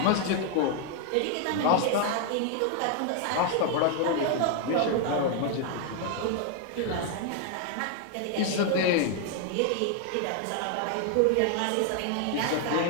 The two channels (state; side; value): different; both; correlation 0.00